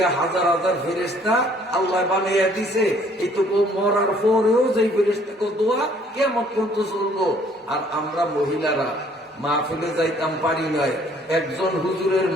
হাজার হাজার ফেরেশতা আল্লাহ বানাইয়া দিছে, এইটুকু মরার পরেও যে ফেরেশতাকে দোয়া কিয়ামত পর্যন্ত চলবো। আর আমরা মহিলারা মাহফিলে যাইতাম পারি নয়, একজন হুজুরের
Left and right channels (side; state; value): both; normal; correlation 0.60